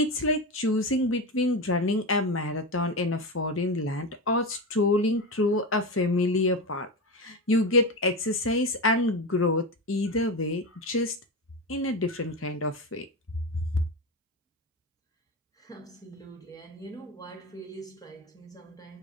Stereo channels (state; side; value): normal; both; correlation 0.19